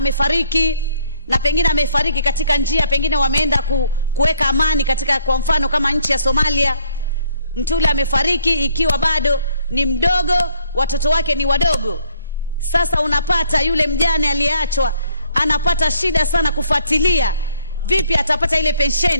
na pengine amefariki katika njia, pengine wameenda kuweka amani katika, kwa mfano kama nchi ya Somalia, mtu yule amefariki ikiwa bado ni mdogo, watoto wake ni wadogo. Sasa unapata yule mjane aliyeachwa anapata shida sana kufuatilia vipi atapata ile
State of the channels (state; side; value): inverted; both; correlation -0.65